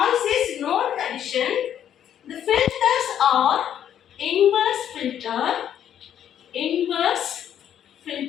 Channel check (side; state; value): right; quieter; 10.0 dB